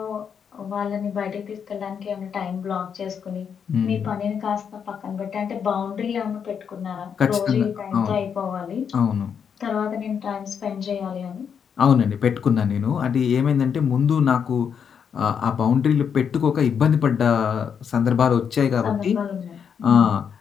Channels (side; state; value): right; quieter; 7.3 dB